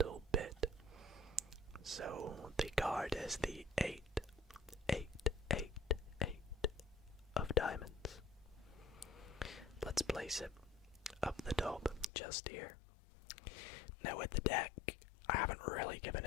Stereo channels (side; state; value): right; drops out; at 12.1 s